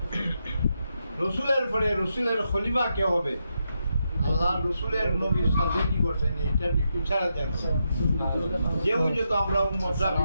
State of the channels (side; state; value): both; inverted; correlation -0.84